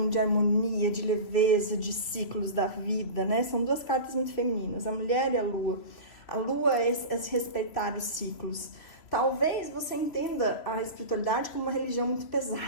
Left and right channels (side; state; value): right; late; 2.9 ms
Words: de harmonia, de leveza, de ciclos da vida, né? São 2 cartas muito femininas, a mulher e a lua. A lua é respeitar os ciclos. Talvez você entenda a espiritualidade como uma religião muito